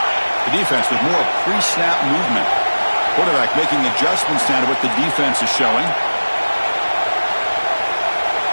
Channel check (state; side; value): inverted; both; correlation -1.00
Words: The defense with more pre-snap movement. Quarterback making adjustments now to what the defense is showing.